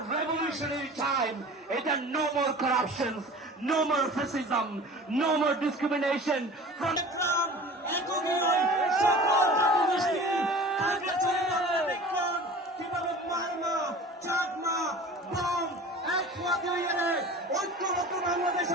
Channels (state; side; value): normal; both; correlation 0.40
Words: revolutionary time. It's a no more corruptions, no more fascism, no more discrimination. From the ground, ঐক্যবদ্ধ